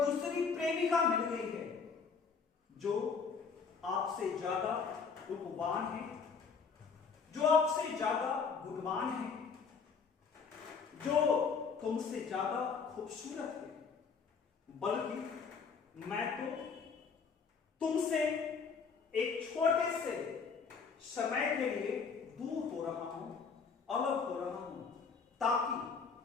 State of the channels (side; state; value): right; quieter; 5.5 dB